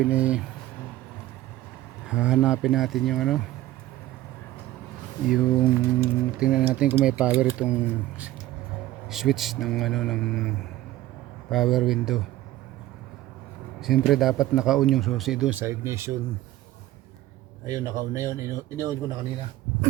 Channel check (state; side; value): quieter; left; 15.3 dB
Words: ay hahanapin natin yung yung tingnan natin kung may power itong switch ng ng power window. Siyempre dapat naka-on yung susi doon sa ignition. Ayun, naka-on na yun. Ini-on ko na kanina.